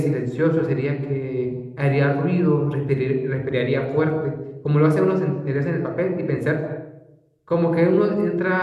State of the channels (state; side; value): identical; both; correlation 1.00